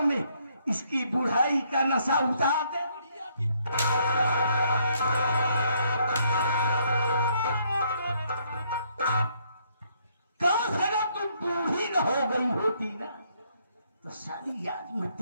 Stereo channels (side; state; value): both; inverted; correlation -0.70